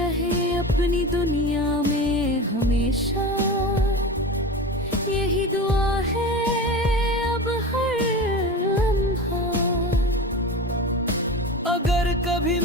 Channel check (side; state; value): both; normal; correlation 0.29